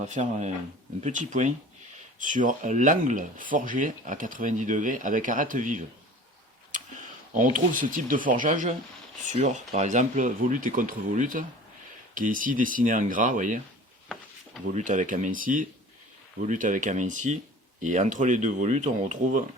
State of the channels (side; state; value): both; normal; correlation 0.42